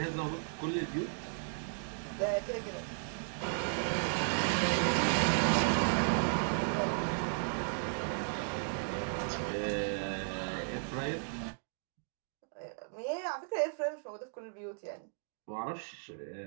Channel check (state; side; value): silent; left; digital silence